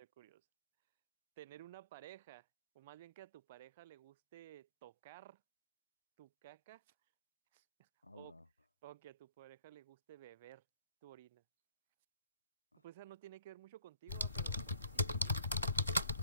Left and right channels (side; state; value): both; inverted; correlation -0.62